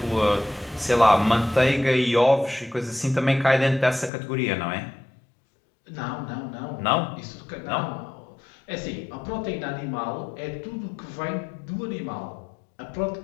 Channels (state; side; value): drops out; right; at 4.1 s